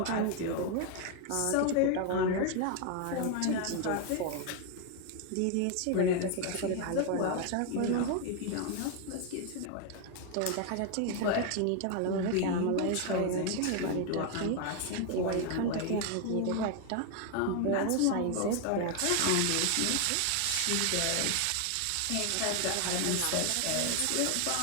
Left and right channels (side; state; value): both; different; correlation 0.00